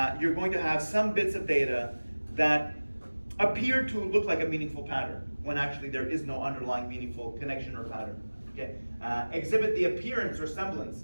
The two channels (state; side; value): inverted; both; correlation -1.00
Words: you're going to have some bits of data that appear to look like a meaningful pattern, when actually there is no underlying meaningful connection or pattern. Okay? Exhibit the appearance or semblance